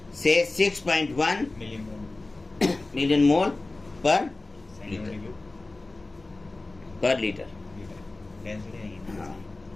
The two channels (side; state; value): right; quieter; 3.1 dB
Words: से 6.1 million मोल पर litre. Density नहीं है। हाँ।